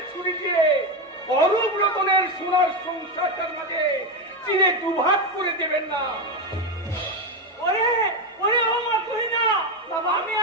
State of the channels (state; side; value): normal; both; correlation 0.11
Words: ছুরি দিয়ে অরূপ রতনের সোনার সংসারটার মাঝে চিনে দুভাগ করে দেবেন না। ওরে ওরে ও মা তুই না বাবা, আমি